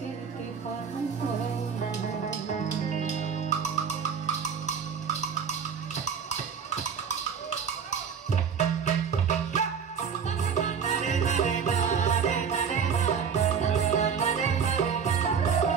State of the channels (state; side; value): quieter; left; 6.7 dB